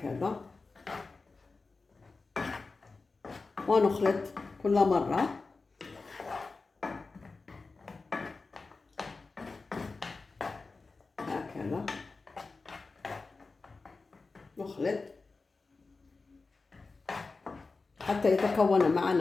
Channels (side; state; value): right; quieter; 4.0 dB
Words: ونخلط كل مرة هكذا، نخلط حتى يتكون